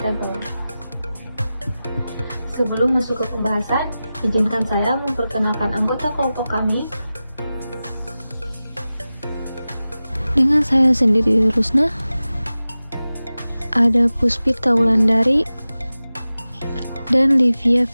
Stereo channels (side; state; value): both; inverted; correlation -0.95